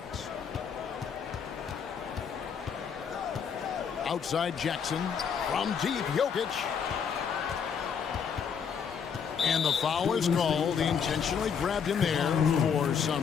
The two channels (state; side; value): quieter; right; 6.9 dB